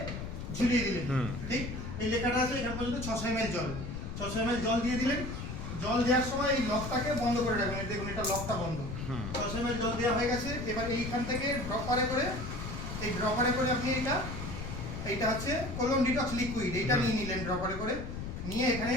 ঝুলিয়ে দিলেন, ঠিক এই লেখাটা আছে এখান পর্যন্ত 600 ml জল, 600 ml জল দিয়ে দিলেন। জল দেওয়ার সময় এই লকটাকে বন্ধ করে রাখবেন, দেখুন এটা লকটা বন্ধ। 600 ml জল দেওয়া হয়ে গেছে। এবার এইখান থেকে ড্রপারে করে আপনি এইটা হচ্ছে কোলন ডিটক্স লিকুইড, এইটা নিয়ে নিলেন ড্রপারে করে, নিয়ে এখানে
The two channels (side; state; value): left; noise; rumble, 6 dB below the sound